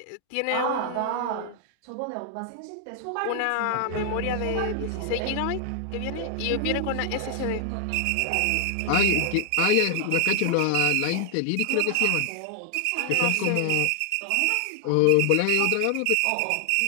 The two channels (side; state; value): both; different; correlation 0.00